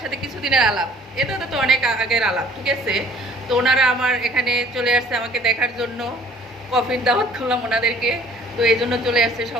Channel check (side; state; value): both; normal; correlation 0.53